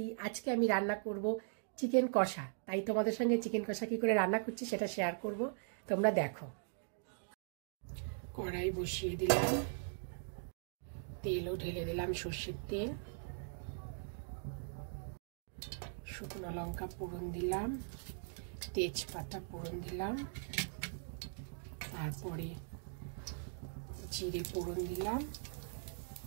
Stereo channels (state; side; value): silent; left; digital silence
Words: আজকে আমি রান্না করব চিকেন কষা। তাই তোমাদের সঙ্গে চিকেন কষা কি করে রান্না করছি সেটা শেয়ার করব, তোমরা দেখো। কড়াই বসিয়ে দিলাম, তেলও ঢেলে দিলাম, সর্ষের তেল। শুকনো লঙ্কা ফোড়ন দিলাম, তেজপাতা ফোড়ন দিলাম, তারপরে জিরে ফোড়ন দিলাম,